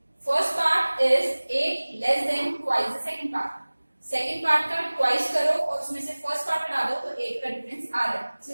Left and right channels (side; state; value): both; inverted; correlation -1.00